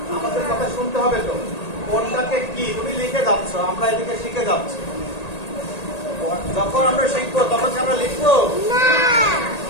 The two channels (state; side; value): late; right; 1.8 ms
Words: আমাদের কথা শুনতে হবে তো কোনটাকে কি তুমি লিখে যাচ্ছ, আমরা এদিকে শিখে যাচ্ছি। যখন আমরা শিখবো তখন কি আমরা লিখবো?